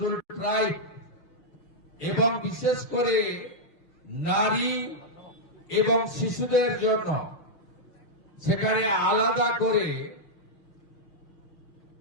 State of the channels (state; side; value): late; right; 6.1 ms